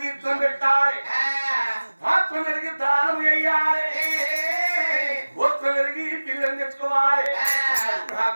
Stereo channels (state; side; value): inverted; both; correlation -1.00